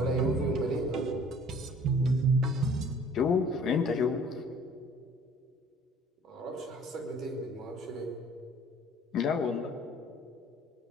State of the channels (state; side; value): normal; both; correlation 0.52